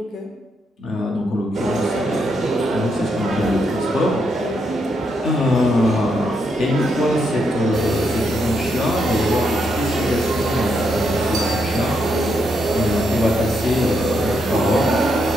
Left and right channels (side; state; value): both; normal; correlation 0.79